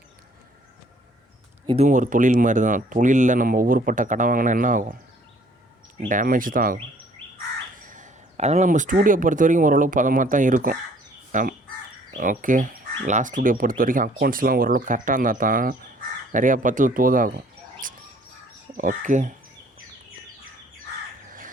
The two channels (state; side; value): normal; both; correlation 0.58